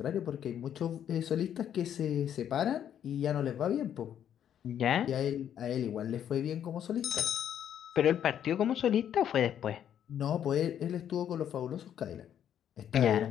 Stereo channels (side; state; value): right; quieter; 9.7 dB